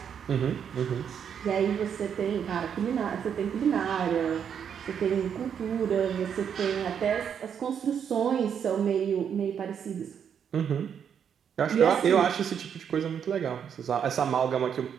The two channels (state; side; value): quieter; left; 7.9 dB